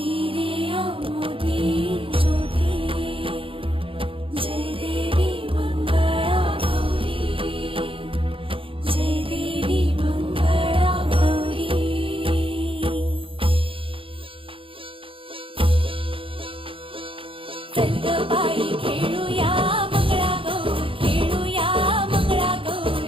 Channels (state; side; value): late; left; 0.26 ms